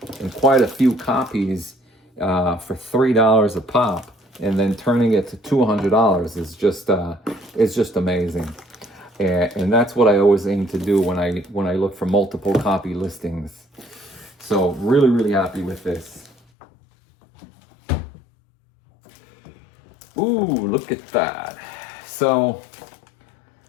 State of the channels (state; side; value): drops out; right; at 16.4 s